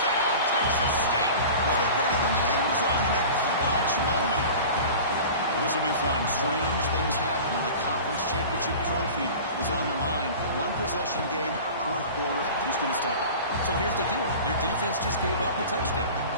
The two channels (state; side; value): inverted; both; correlation -0.37